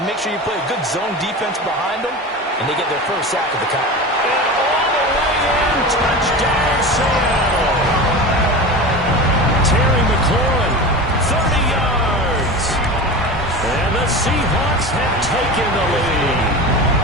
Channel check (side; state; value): both; normal; correlation 0.29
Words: make sure you play a good zone defense behind them, and they get their first sack of the count. And all the way in, touchdown Seattle. Terry McLaurin, 30 yards. And the Seahawks have taken the lead.